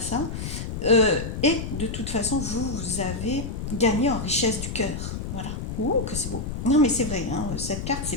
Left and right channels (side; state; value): left; noise; rumble, 5 dB below the sound